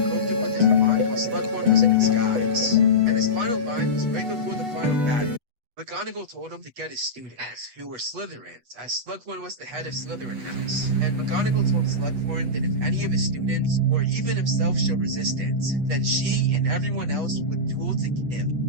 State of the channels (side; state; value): left; late; 8.2 ms